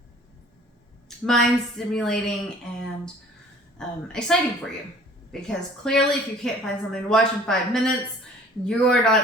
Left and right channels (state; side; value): normal; both; correlation 0.51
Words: mind stimulating and exciting for you. Because clearly, if you can't find something to watch in 5 minutes, you're